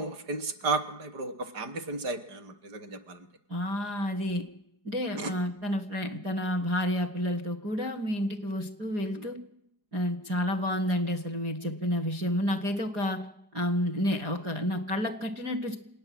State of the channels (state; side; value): late; left; 4.9 ms